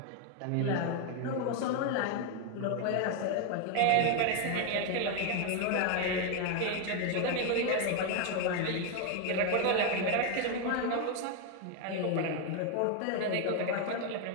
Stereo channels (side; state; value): both; different; correlation 0.01